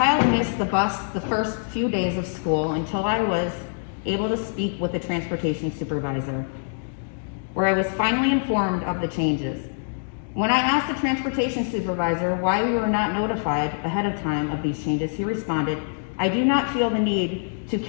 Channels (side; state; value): right; silent; digital silence